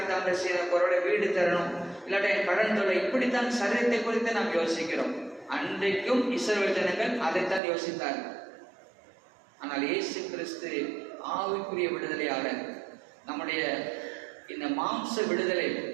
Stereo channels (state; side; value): drops out; left; at 7.6 s